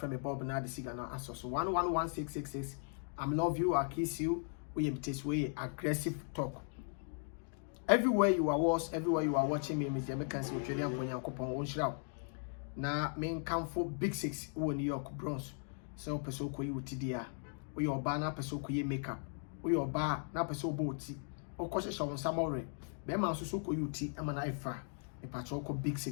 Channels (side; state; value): right; silent; 53 dB below the other